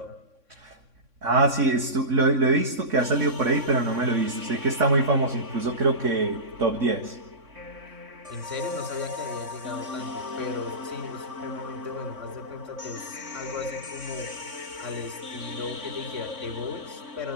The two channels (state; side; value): late; left; 3.6 ms